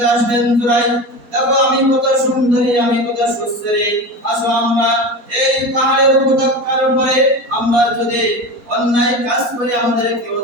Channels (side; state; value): left; late; 4.2 ms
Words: আসলেন। জুরাইজ, দেখো আমি কত সুন্দরী, আমি কত সুস্থরী, আসো আমরা এই পাহাড়ের উপত্যকার উপরে আমরা যদি অন্যায় কাজ করি আমাদের কেউ